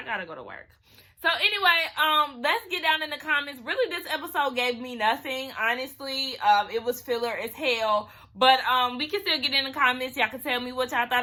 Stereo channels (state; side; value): identical; both; correlation 1.00